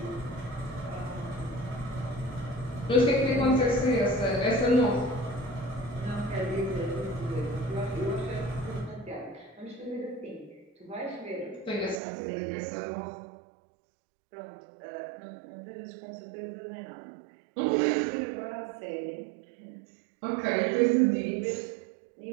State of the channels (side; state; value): left; drops out; at 12.0 s